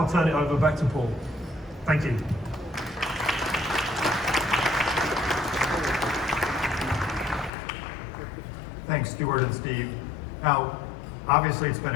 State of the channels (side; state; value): right; drops out; at 7.5 s